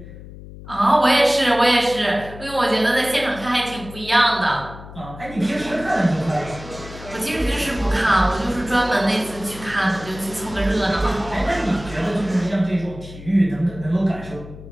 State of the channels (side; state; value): left; noise; hum, 15 dB below the sound